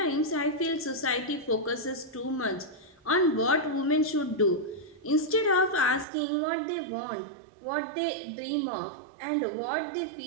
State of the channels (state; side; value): drops out; left; at 6.1 s